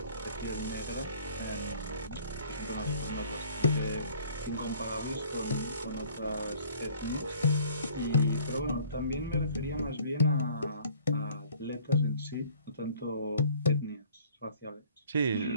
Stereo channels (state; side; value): inverted; both; correlation -0.54